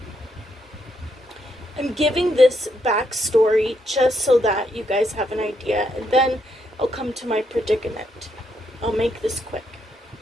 I'm giving this backstory just so that you guys have an idea, and then I'll come to my predicament. I'll make this quick.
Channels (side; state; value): both; normal; correlation 0.77